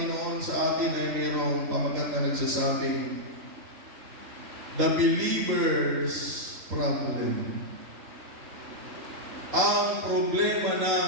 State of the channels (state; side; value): late; left; 3.9 ms